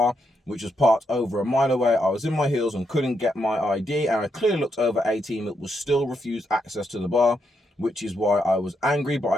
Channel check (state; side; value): normal; both; correlation 0.80